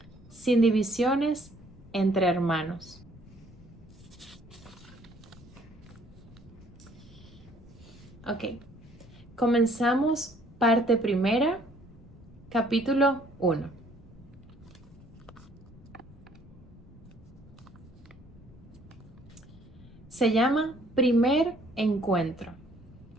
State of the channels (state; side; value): normal; both; correlation 0.61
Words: sin divisiones entre hermanos. Ok, comenzamos parte primera, capítulo 1. Se llama Primer Encuentro.